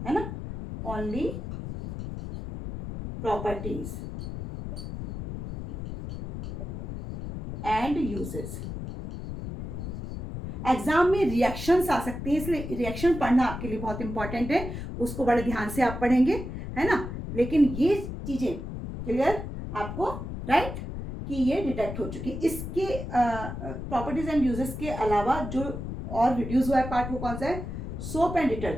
है ना, only properties and uses. Exam में रिएक्शंस आ सकते हैं, इसलिए रिएक्शन पढ़ना आपके लिए बहुत इंपॉर्टेंट है, उसको बड़े ध्यान से आप पढ़ेंगे, है ना। लेकिन ये चीजें क्लियर आपको, राइट, कि ये डिटेक्ट हो चुकी। इसके प्रॉपर्टीज एंड यूजेस के अलावा जो और रिड्यूस हुआ है पार्ट, वो कौन सा है, सोप एंड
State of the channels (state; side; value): noise; left; rumble, 7 dB below the sound